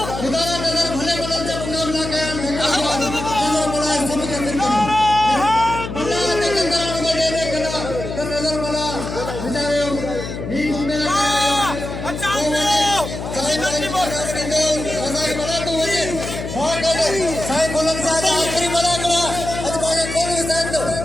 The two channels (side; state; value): left; noise; hum, 7 dB below the sound